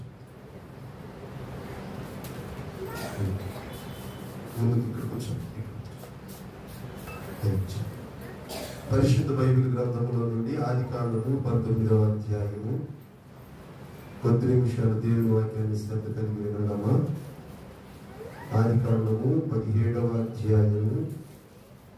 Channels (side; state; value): both; identical; correlation 1.00